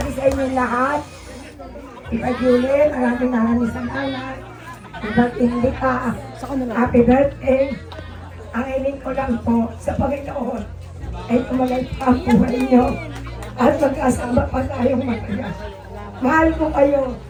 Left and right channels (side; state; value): both; identical; correlation 1.00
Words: sa inyo lahat. Iba Julie, maraming salamat. Iba't hindi ka. Happy birthday. Ang hiling ko lang po sa Panginoon ay tumalay pa ang buhay niyo at magkasama pa tayong matagal. Mahal ko kayo,